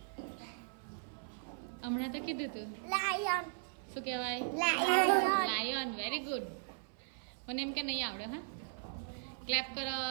હમણાં તો કીધું તું. લાયન. શું કહેવાય? લાયન. Very good. મને એમ કે નહીં આવડે. હા, ક્લેપ કરો.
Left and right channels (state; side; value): silent; left; 53 dB below the other